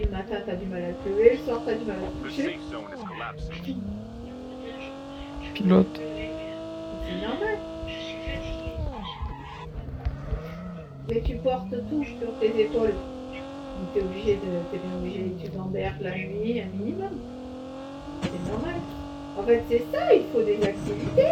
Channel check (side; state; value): both; identical; correlation 1.00